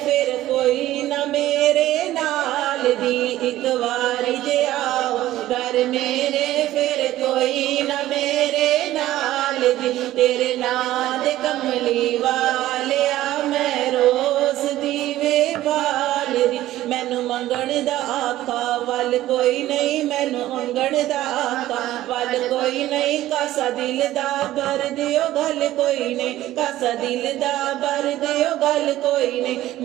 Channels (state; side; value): quieter; left; 14.7 dB